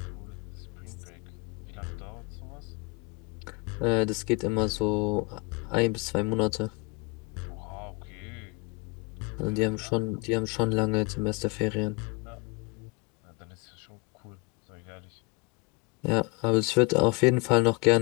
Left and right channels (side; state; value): right; quieter; 26.9 dB